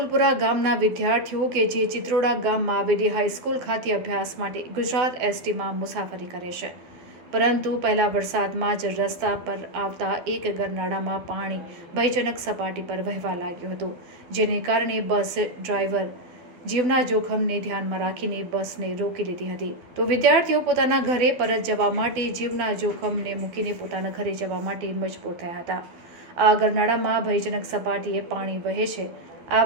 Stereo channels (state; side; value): late; left; 12 ms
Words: ગામના વિદ્યાર્થીઓ કે જે ચિત્રોડા ગામમાં આવેલી હાઈસ્કૂલ ખાતે અભ્યાસ માટે ગુજરાત એસટીમાં મુસાફરી કરે છે, પરંતુ પહેલા વરસાદમાં જ રસ્તા પર આવતા એક ગરનાળામાં પાણી ભયજનક સપાટી પર વહેવા લાગ્યું હતું, જેને કારણે બસ ડ્રાઈવર જીવના જોખમને ધ્યાનમાં રાખીને બસને રોકી લીધી હતી. તો વિદ્યાર્થીઓ પોતાના ઘરે પરત જવા માટે જીવના જોખમને મૂકીને પોતાના ઘરે જવા માટે મજબૂર થયા હતા. આ ગરનાળામાં ભયજનક સપાટીએ પાણી વહે છે. આ